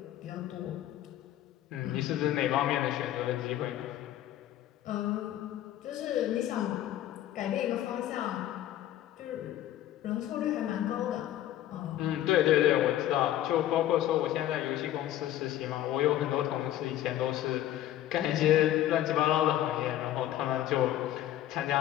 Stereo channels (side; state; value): right; quieter; 12.8 dB